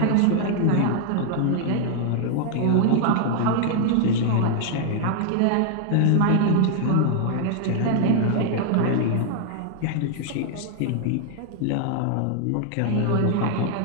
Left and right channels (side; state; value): both; different; correlation 0.00